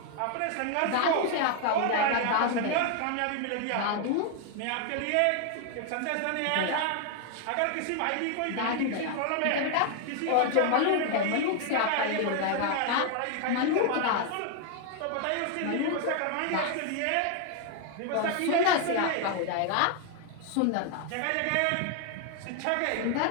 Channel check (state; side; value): different; both; correlation 0.00